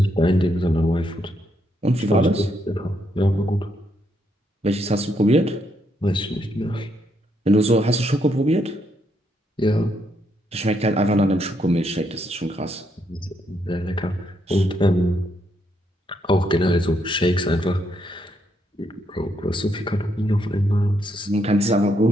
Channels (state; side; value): normal; both; correlation 0.76